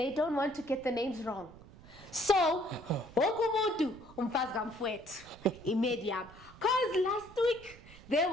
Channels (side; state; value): right; noise; rumble, 20 dB below the sound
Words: don't want to get the names wrong. So, wokumuntu umfazi kamfowethu iMedium. Cause last week there